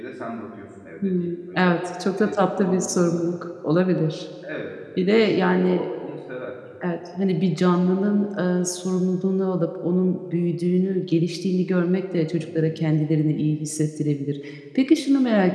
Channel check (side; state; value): both; identical; correlation 1.00